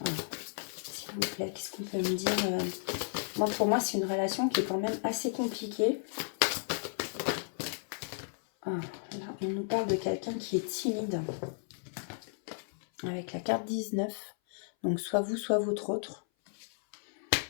S'il vous plaît, qu'est-ce qu'on peut me dire? Moi, pour moi, c'est une relation qui est quand même assez compliquée. Ah, là, on nous parle de quelqu'un qui est timide. Avec la carte 19. Donc, soit vous, soit votre autre.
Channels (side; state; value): right; silent; 55 dB below the other